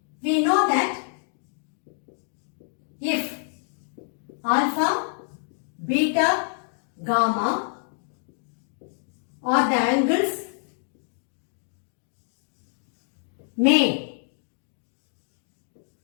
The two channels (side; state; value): right; silent; digital silence